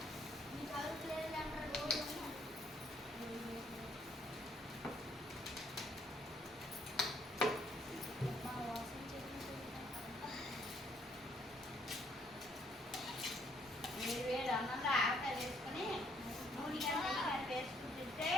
వేడి అన్నంలో ఆవకాయ వేసుకొని నూనె కానీ వేసుకుని తింటే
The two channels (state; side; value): normal; both; correlation 0.68